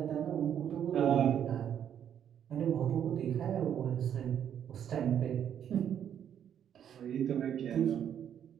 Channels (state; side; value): quieter; left; 9.3 dB